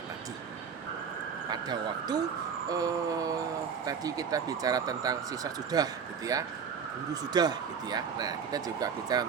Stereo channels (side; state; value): left; quieter; 6.6 dB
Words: tadi. Pada waktu tadi kita bicara tentang siswa sudah gitu ya, guru sudah gitu ya. Nah, kita juga bicara